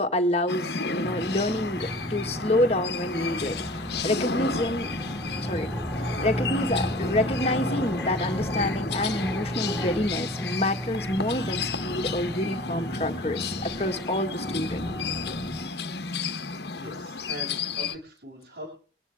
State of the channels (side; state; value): both; normal; correlation 0.42